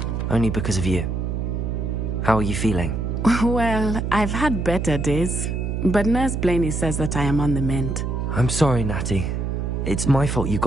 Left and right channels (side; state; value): right; noise; hum, 2 dB below the sound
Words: Only because of you. How are you feeling? Well, I've had better days, but Nurse Blaney says that I am on the mend. I'm sorry, Natty. It's my fault you